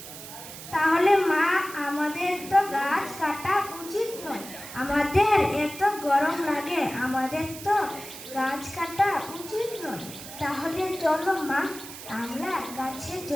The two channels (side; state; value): right; noise; hiss, 13 dB below the sound